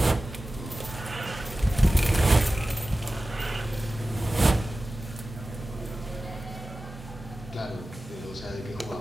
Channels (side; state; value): both; normal; correlation 0.95